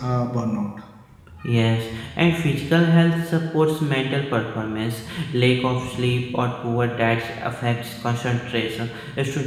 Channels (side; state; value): both; identical; correlation 1.00